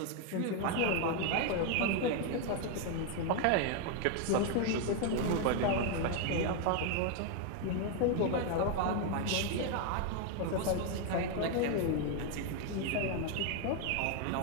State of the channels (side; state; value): both; different; correlation 0.01